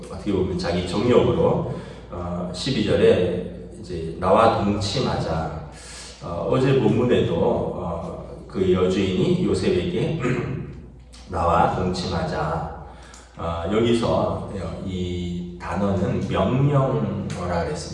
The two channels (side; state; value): both; identical; correlation 1.00